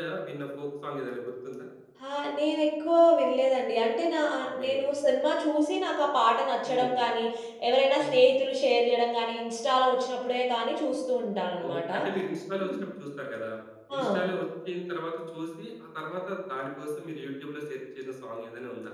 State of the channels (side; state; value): both; identical; correlation 1.00